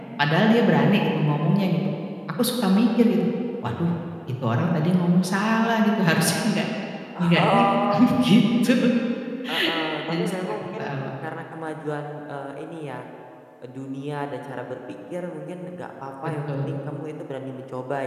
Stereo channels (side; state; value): both; identical; correlation 1.00